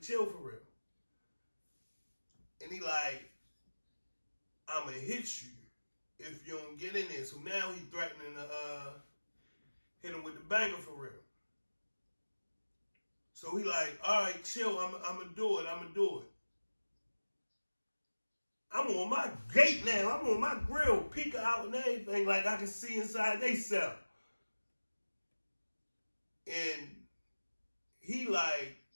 chill for real. And he like, I'ma hit you if you don't get in there. So now he threatening to hit him with the banger for real. So he like, all right, chill, I'ma do it. I'm on my gate now. I'm on my grill, peeking out and everything, like I can see inside they cell. And he like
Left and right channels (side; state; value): both; inverted; correlation -1.00